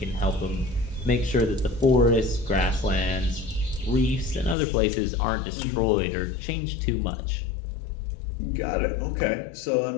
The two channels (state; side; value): drops out; right; at 4.5 s